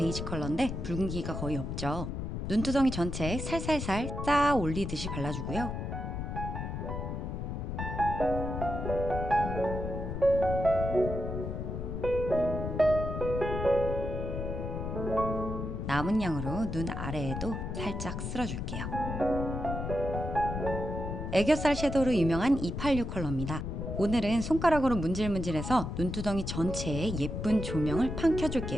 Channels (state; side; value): noise; left; rumble, 4 dB below the sound